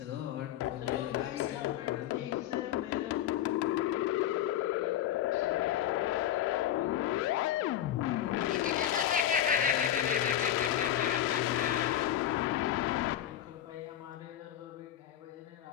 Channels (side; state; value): right; quieter; 11.5 dB